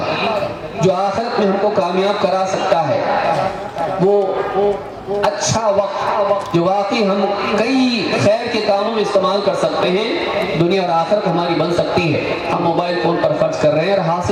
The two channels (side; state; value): both; identical; correlation 1.00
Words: جو آخرت میں ہم کو کامیاب کرا سکتا ہے، وہ اچھا وقت جو واقعی ہم کئی خیر کے کاموں میں استعمال کر سکتے ہیں، دنیا اور آخرت ہماری بن سکتی ہے، ہم موبائل فون پر خرچ کر رہے ہیں اور